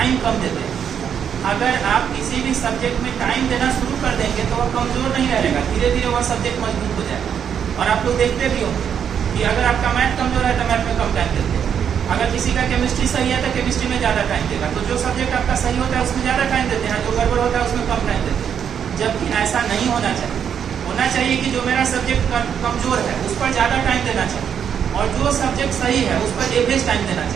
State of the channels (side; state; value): left; quieter; 8.1 dB